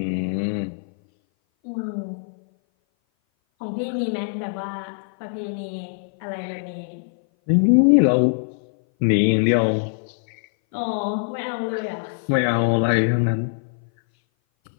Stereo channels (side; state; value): right; silent; 58 dB below the other